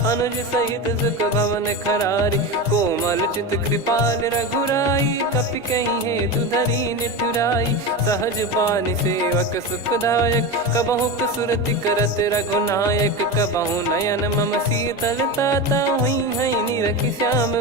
अनुज सहित सुख भवन खरारी, कोमल चित कृपाल रघुराई। कपि कहीं हेतु धरी निठुराई, सहज पानि सेवक सुखदायक। कबहु सुरति करत रघुनायक, कबहु नयन मम शीतल ताता। हुई है निरखि श्याम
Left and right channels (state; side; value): normal; both; correlation 0.21